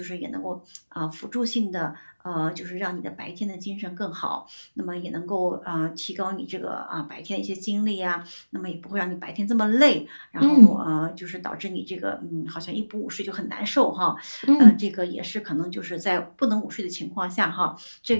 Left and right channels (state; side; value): inverted; both; correlation -1.00